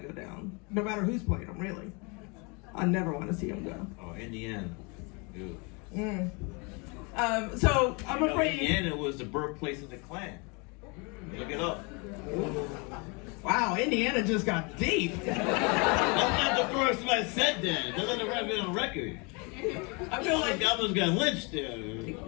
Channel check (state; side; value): quieter; right; 30.8 dB